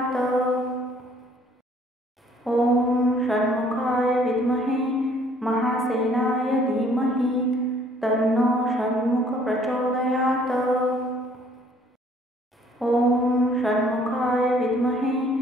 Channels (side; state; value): both; normal; correlation 0.60